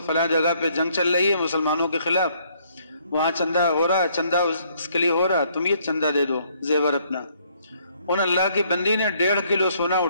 فلاں جگہ پہ جنگ چل رہی ہے مسلمانوں کے خلاف، وہاں چندہ ہو رہا، چندہ اس کے لیے ہو رہا، تم یہ چندہ دے دو زیور اپنا۔ ان اللہ کی بندی نے 1.5 کلو سونا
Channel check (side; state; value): both; inverted; correlation -0.67